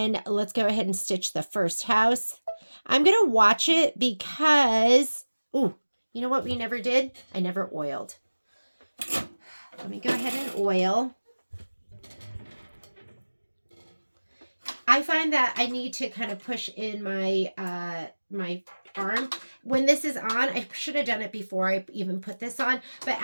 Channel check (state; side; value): inverted; both; correlation -1.00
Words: let's go ahead and stitch the first house. I'm going to watch it because, ooh, you know what we never did? I never oiled. Let me go ahead and oil. I find that I need to kind of push in my my arm. When this is on, I should have done it before I even put this on, but